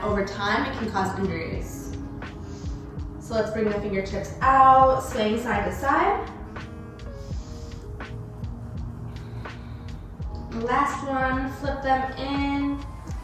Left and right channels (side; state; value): both; identical; correlation 1.00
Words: over time it can cause injuries. So let's bring the fingertips out, swaying side to side. Last one, flip them in.